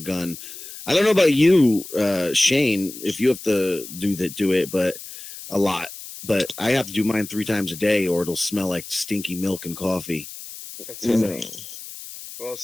I don't know about you, Shane, if you have to do it, but a lot. But I have to do mine 3 times a day, or it'll smell like stinky milk and coffee. That's No. funny. Well,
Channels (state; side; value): noise; left; hiss, 13 dB below the sound